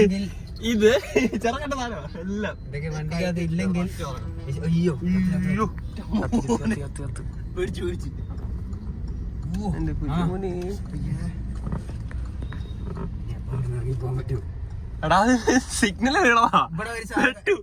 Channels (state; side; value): identical; both; correlation 1.00